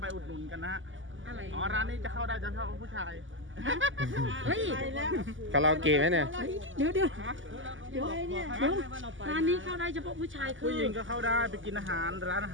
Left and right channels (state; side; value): late; left; 0.57 ms